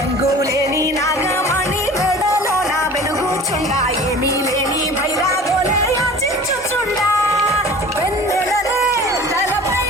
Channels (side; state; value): both; normal; correlation 0.42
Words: నాగమణి మెడలో నా వెలుగుచుండ ఏమీ లేని భైరాగోలే యాచించుచుండా వెన్నెలనే తలపై